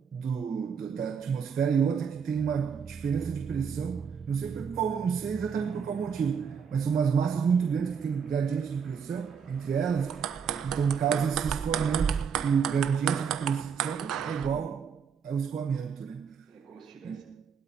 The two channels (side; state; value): left; quieter; 6.6 dB